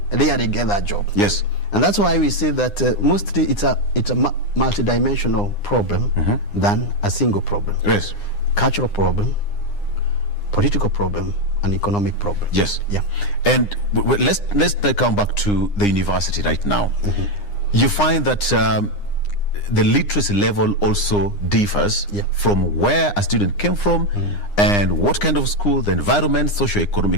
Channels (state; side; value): late; right; 9.8 ms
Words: rarely get that job. Yes. And that's why we say that mostly it's a multidimensional problem than a single problem. Yes. Cultural problem, political problem, and economic problem. Yes. Yeah. And let's come back to the university right now. You find that the literacy level also differs from where a student came from and what kind of school, the environment,